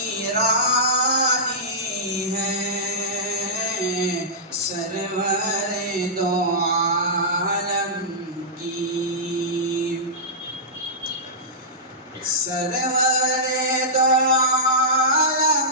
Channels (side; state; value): both; normal; correlation -0.14